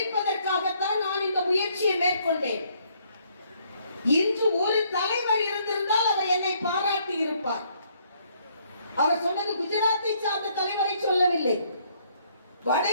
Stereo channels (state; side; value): inverted; both; correlation -0.67